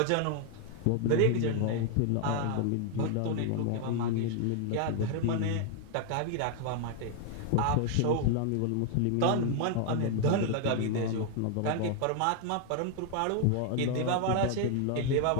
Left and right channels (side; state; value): both; different; correlation 0.00